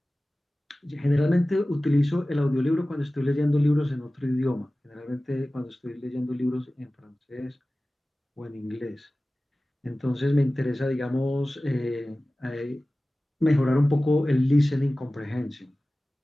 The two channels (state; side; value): normal; both; correlation 0.97